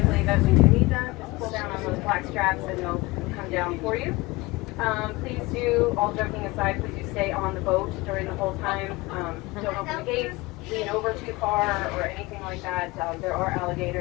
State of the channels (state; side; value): quieter; right; 22.0 dB